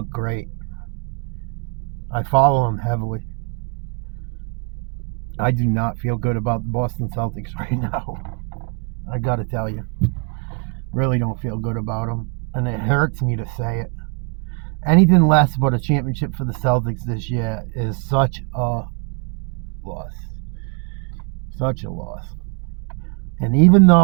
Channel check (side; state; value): left; quieter; 34.2 dB